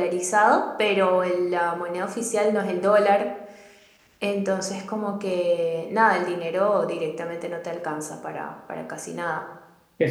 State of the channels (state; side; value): identical; both; correlation 1.00